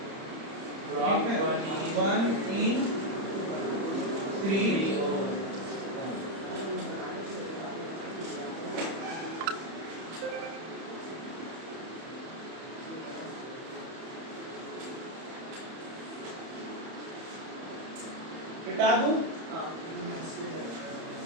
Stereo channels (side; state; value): left; late; 31 ms